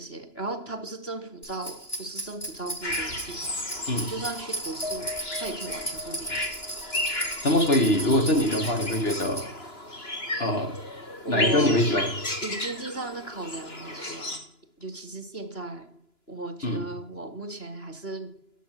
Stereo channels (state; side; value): late; right; 2.9 ms